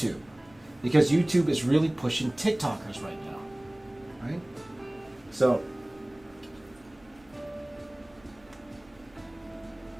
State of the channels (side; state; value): right; noise; hum, 28 dB below the sound